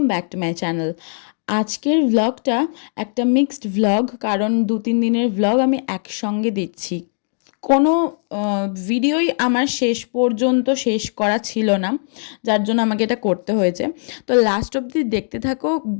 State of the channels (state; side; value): silent; right; digital silence